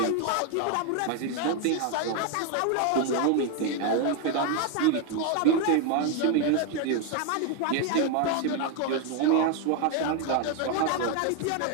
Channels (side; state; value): both; different; correlation 0.01